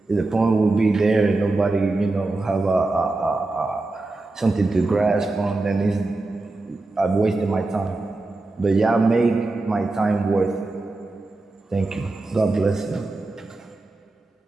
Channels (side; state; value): left; quieter; 3.1 dB